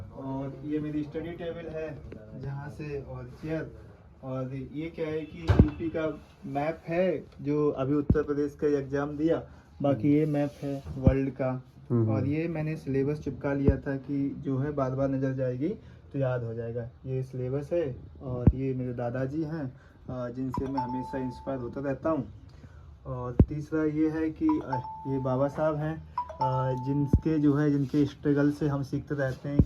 और ये मेरी स्टडी टेबल है जहाँ से, और चेयर। और ये क्या है कि यूपी का मैप है जो अभी उत्तर प्रदेश का एग्ज़ाम दिया। बाकी ये मैप है वर्ल्ड का। और ये मैंने सिलेबस चिपका लिया था कि जो है बार बार नज़र जाएगी तो याद हो जाएगा। ये सिलेबस है। और ये मेरे दादाजी हैं जिनसे मैं हमेशा इंस्पायर होता रहता हूँ। और तीसरा ये है कि ये बाबा साहब हैं जिनके स्ट्रगल से हम सीखते रहते हैं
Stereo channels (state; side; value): identical; both; correlation 1.00